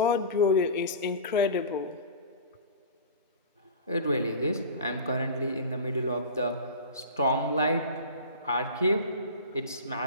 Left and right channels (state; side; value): inverted; both; correlation -0.34